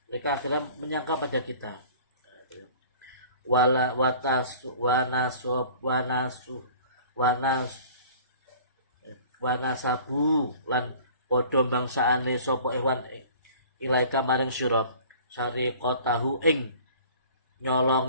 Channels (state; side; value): inverted; both; correlation -0.47